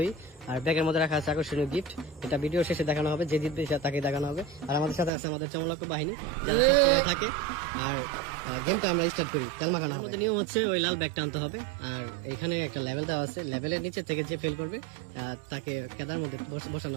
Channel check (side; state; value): left; drops out; at 5.1 s